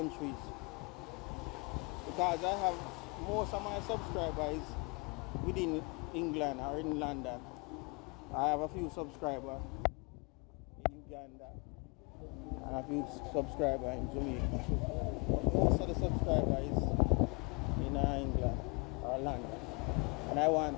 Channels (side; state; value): right; quieter; 32.6 dB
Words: because I have most of my subscribers within England or in London. I have a few subscribers in Uganda and a few subscribers in Jamaica. Most of the subscribers in England or London, and I want